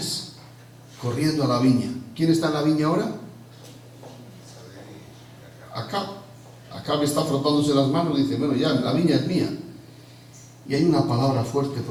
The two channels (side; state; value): both; identical; correlation 1.00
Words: corriendo a la viña. ¿Quién está en la viña ahora? Acab. Acab está frotándose las manos y dice, bueno, ya, la viña es mía. Y hay una palabra fuerte,